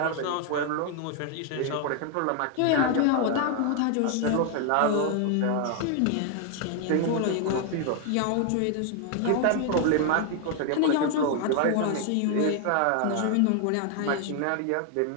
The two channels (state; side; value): different; both; correlation 0.00